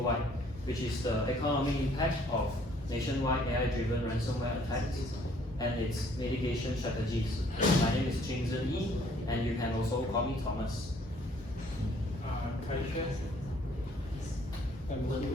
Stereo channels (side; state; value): both; normal; correlation 0.61